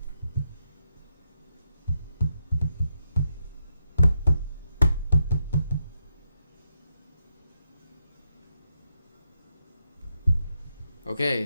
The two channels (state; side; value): inverted; both; correlation -0.82